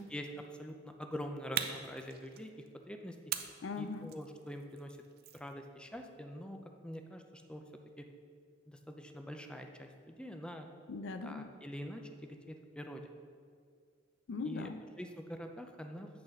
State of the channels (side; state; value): both; normal; correlation 0.51